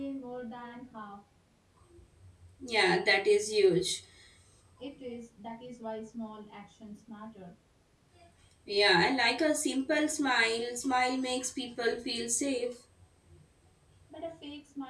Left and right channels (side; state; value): both; identical; correlation 1.00